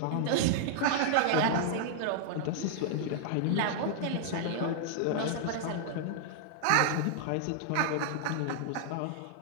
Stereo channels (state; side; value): different; both; correlation -0.01